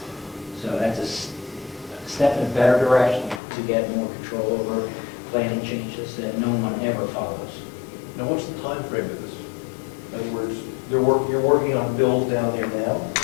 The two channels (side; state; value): right; drops out; at 3.4 s